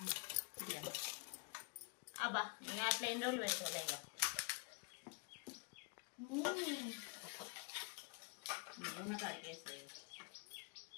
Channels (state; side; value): quieter; right; 33.6 dB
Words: అబ్బా ఇంకా అట్లా ఎన్ని రోజులు పెడతావులే ఇక. ఉన్న కాడికి వేస్తుంది.